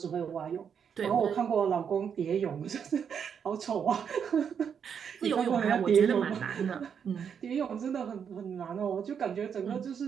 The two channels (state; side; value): quieter; left; 7.4 dB